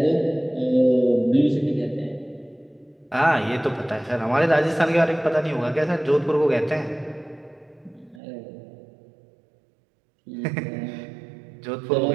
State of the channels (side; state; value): left; drops out; at 8.2 s